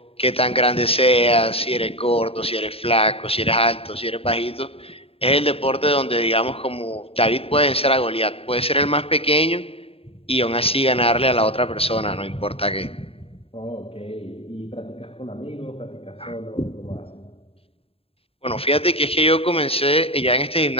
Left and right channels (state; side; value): late; right; 0.28 ms